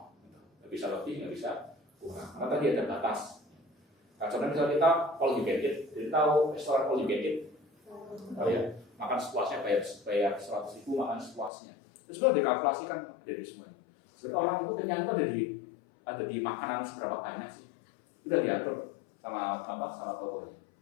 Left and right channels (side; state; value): right; drops out; at 11.5 s